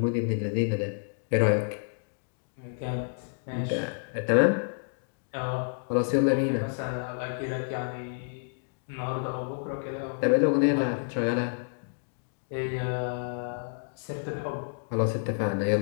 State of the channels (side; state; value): right; silent; digital silence